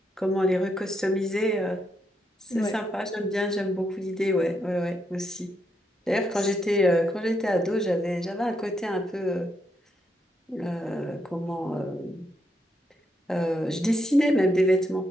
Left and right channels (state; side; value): normal; both; correlation 0.79